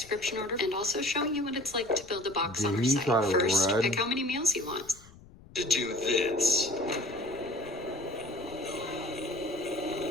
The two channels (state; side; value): noise; left; rumble, 22 dB below the sound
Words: order and also showing you what it's like to build a box on our Did he site. try to First, run? pick how many meals you want. this.